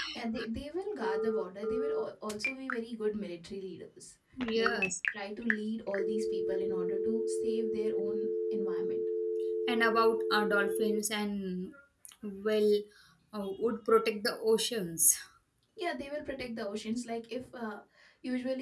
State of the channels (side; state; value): both; identical; correlation 1.00